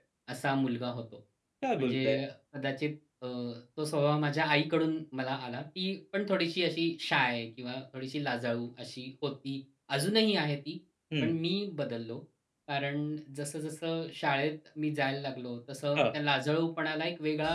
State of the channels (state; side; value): identical; both; correlation 1.00